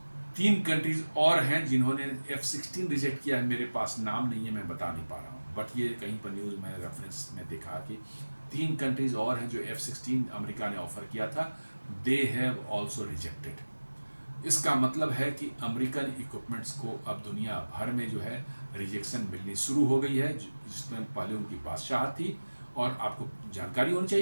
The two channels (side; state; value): both; inverted; correlation -1.00